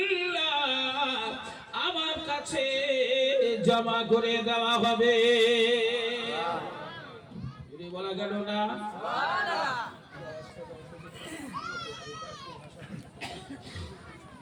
আমার কাছে জমা করে দেওয়া হবে। বলা গেল না?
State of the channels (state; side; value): identical; both; correlation 1.00